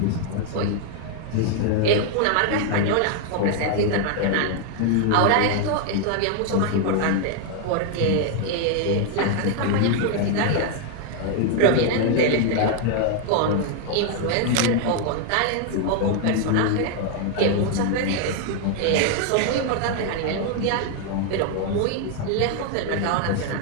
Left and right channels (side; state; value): both; different; correlation 0.00